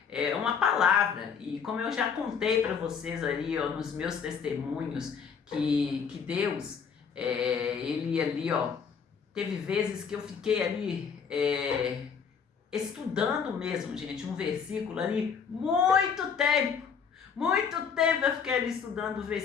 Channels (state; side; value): quieter; right; 6.5 dB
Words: uma palavra. E como eu já contei para vocês ali, ó, nos meus testemunhos, que Deus, ele ali, ó, teve vezes que eu fiquei ali estudando mesmo, gente, um versículo ali, muito tempo eu fiquei ali estudando o